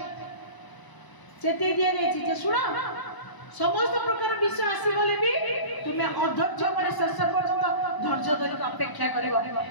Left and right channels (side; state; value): right; late; 1.0 ms